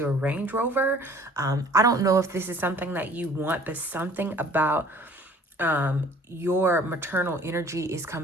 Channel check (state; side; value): normal; both; correlation 0.52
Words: a Range Rover. I don't know if this is something that you want, but something about your maternal energy is